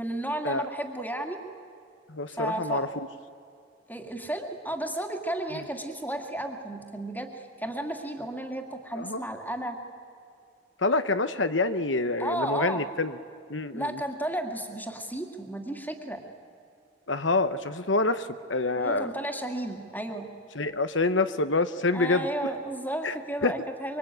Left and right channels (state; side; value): normal; both; correlation 0.07